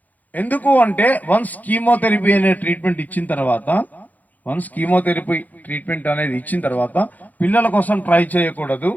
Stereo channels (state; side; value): late; right; 0.080 ms